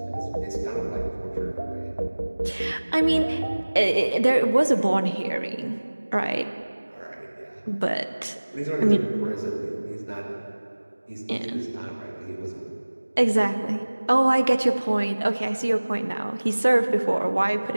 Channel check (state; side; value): inverted; both; correlation -1.00